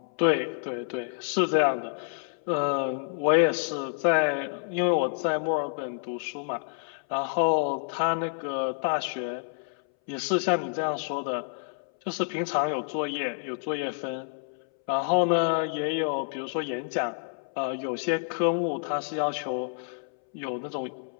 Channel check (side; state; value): right; silent; 59 dB below the other